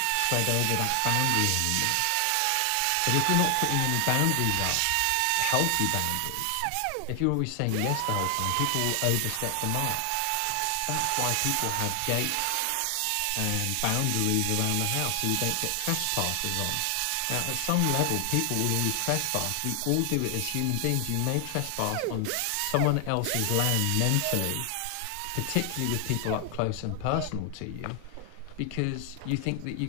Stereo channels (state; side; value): different; both; correlation 0.00